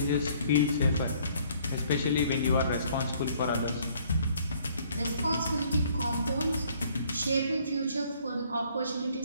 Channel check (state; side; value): inverted; both; correlation -0.61